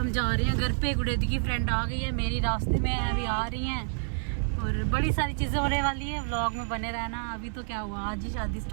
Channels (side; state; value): left; silent; digital silence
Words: जा रहे हैं घर पे। गुड़ेदी की फ्रेंड आ गई है, मेरी रास्ते में है, अभी आ रही हैं और बड़ी सारी चीज़ें होने वाली है। व्लॉग में बने रहना। अभी तो क्या हुआ, आज ही शादी